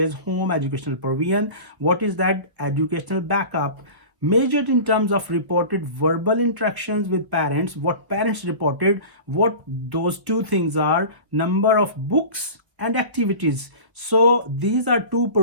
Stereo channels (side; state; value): left; late; 1.4 ms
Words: home educational provision. What is that? Educational backup, measured in terms of reported verbal interactions with parents, what parents reported, what those two things are, number of books and activities. So these are two